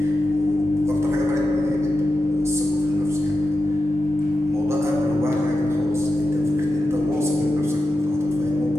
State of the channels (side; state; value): both; normal; correlation 0.91